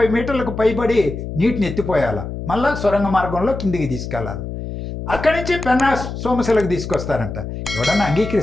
మీటర్లకు పైబడి నీటిని ఎత్తిపోయాల, మళ్ళా సొరంగ మార్గంలో కిందికి తీసుకెళ్ళాలి. అక్కడి నుంచి పెన్నా సోమశిలకు తీసుకొస్తారంట. ఎవడన్నా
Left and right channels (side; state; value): left; noise; hum, 7 dB below the sound